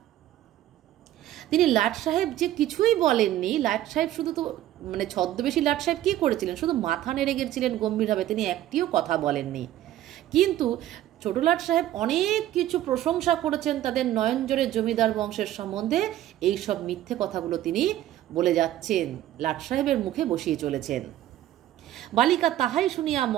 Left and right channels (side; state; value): left; quieter; 13.3 dB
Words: তিনি লাট সাহেব যে কিছুই বলেননি। লাট সাহেব শুধু তো মানে ছদ্মবেশী লাট সাহেব কি করেছিলেন, শুধু মাথা নেড়ে গেছিলেন গম্ভীরভাবে, তিনি একটিও কথা বলেননি। কিন্তু ছোট লাট সাহেব অনেক কিছু প্রশংসা করেছেন তাদের নয়নজোরের জমিদার বংশের সম্বন্ধে। এই সব মিথ্যে কথাগুলো তিনি বলে যাচ্ছেন, লাট সাহেবের মুখে বসিয়ে চলেছেন। বালিকা তাহাই শুনিয়া